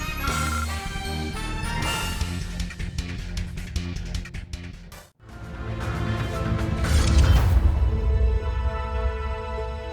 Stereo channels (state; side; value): identical; both; correlation 1.00